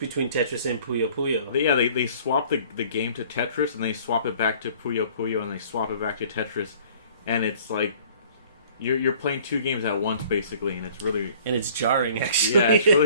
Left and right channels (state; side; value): inverted; both; correlation -0.53